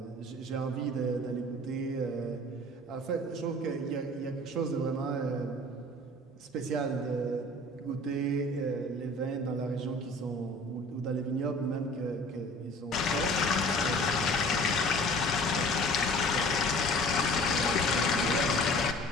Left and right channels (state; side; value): normal; both; correlation 0.46